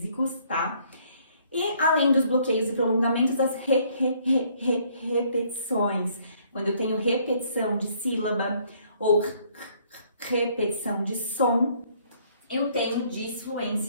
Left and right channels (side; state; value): both; inverted; correlation -0.64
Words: tá? E além dos bloqueios e prolongamentos, as repetições. Quando eu tenho repetição de sílaba ou repetição de som, eu tenho